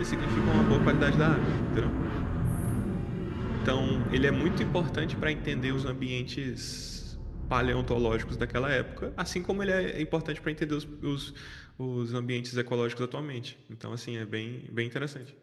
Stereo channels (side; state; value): both; identical; correlation 1.00